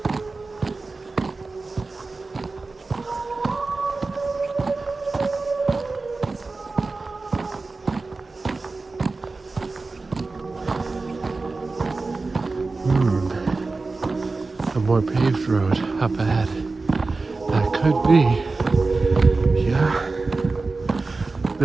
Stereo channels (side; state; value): left; quieter; 3.7 dB